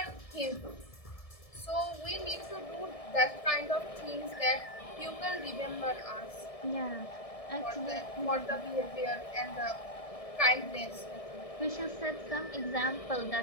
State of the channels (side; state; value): right; late; 1.6 ms